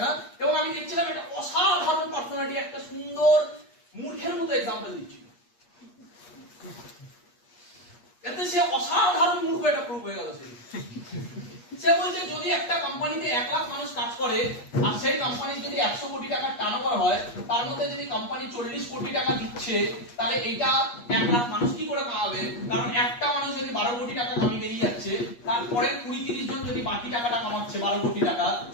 না। এবং আমি দেখছিলাম একটা অসাধারণ পার্সোনালিটি একটা সুন্দর মূর্খের মতো এক্সাম্পল দিচ্ছিল, এতে সে অসাধারণ মূর্খ এটা প্রুফ হয়ে গেল। সে বলছে যদি একটা কোম্পানিতে 1 লাখ মানুষ কাজ করে আর সেই কোম্পানির যদি 100 কোটি টাকার টার্নওভার হয়, তার মধ্যে যদি কোম্পানি 40 কোটি টাকা দিচ্ছে, তাহলে এইটা 1 লাখ মানুষ কি করে কামাবে? কারণ একটা মানুষ যদি 12 কোটি টাকা কামিয়ে বেরিয়ে যাচ্ছে, তারপরে 20-30 জন যদি বাকি টাকাটা কামাচ্ছে 12 কোটি টাকা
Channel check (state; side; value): late; right; 8.4 ms